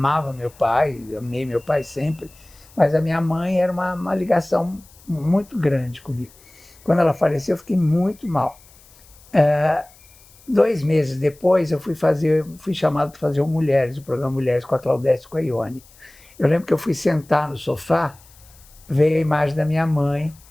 meu pai, amei meu pai sempre, mas a minha mãe era uma ligação muito grande comigo. Quando ela faleceu, eu fiquei muito mal. 2 meses depois, eu fui chamado para fazer o Mulheres, o programa Mulheres com a Claudete e com a Ione. Eu lembro que eu fui sentar no sofá, veio a imagem da minha mãe,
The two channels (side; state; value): left; noise; hiss, 26 dB below the sound